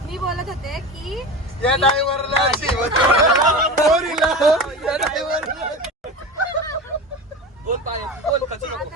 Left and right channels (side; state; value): both; normal; correlation 0.29